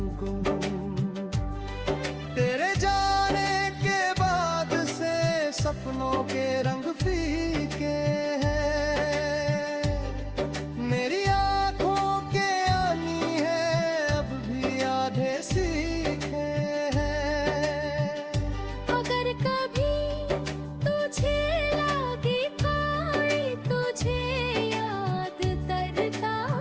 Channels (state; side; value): identical; both; correlation 1.00